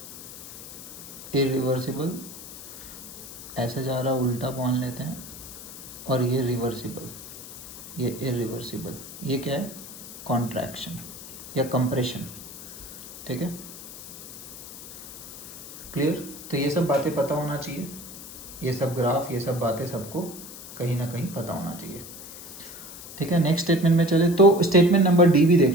इरिवर्सिबल ऐसे जा रहा उल्टा मान लेते हैं, और ये रिवर्सिबल, ये इरिवर्सिबल, ये क्या है, कॉन्ट्रैक्शन या कंप्रेशन। ठीक है, क्लियर। तो ये सब बातें पता होना चाहिए, ये सब ग्राफ, ये सब बातें सबको कहीं ना कहीं पता होना चाहिए। ठीक है, नेक्स्ट स्टेटमेंट में चले तो स्टेटमेंट नंबर डी भी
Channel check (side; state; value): left; noise; hiss, 13 dB below the sound